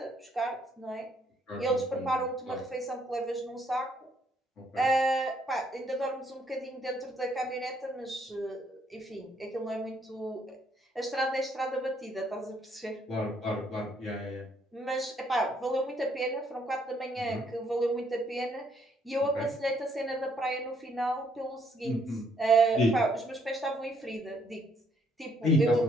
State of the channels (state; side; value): normal; both; correlation 0.69